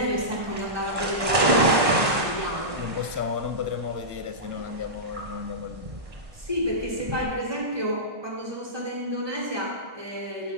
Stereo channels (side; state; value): left; late; 1.6 ms